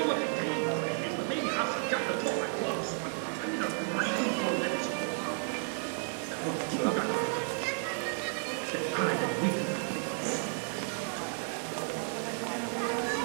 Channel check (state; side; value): silent; left; 56 dB below the other